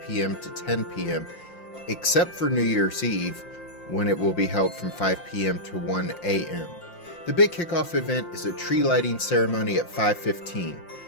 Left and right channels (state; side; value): late; right; 5.7 ms